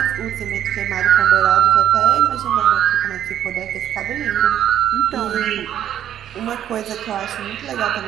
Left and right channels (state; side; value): quieter; left; 10.7 dB